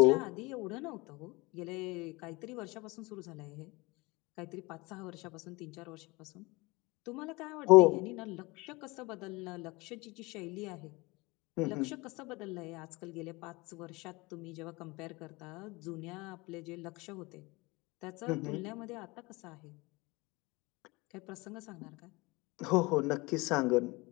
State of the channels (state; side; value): quieter; right; 24.0 dB